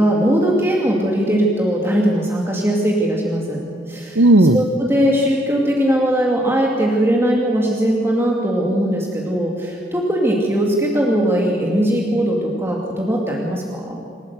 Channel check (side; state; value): both; normal; correlation 0.70